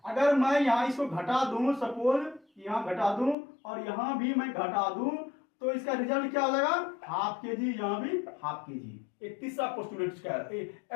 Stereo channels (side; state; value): right; drops out; at 3.4 s